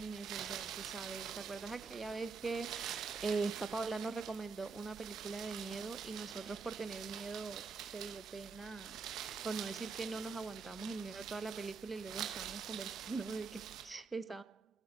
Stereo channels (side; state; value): left; quieter; 4.7 dB